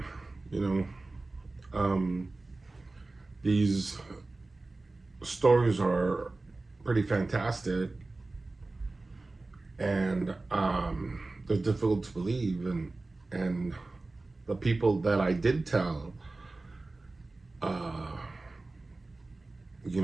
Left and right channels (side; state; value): left; quieter; 3.2 dB